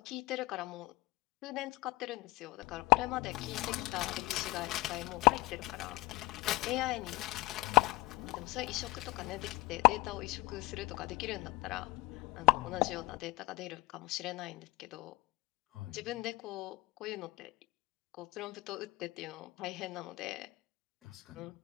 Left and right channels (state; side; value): quieter; right; 21.5 dB